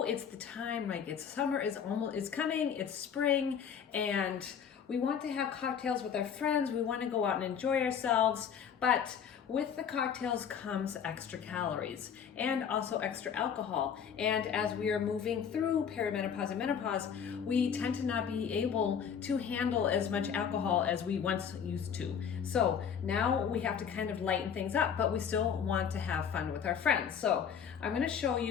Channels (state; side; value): quieter; right; 7.6 dB